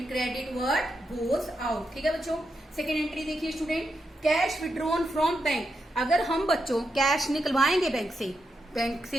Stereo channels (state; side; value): normal; both; correlation 0.85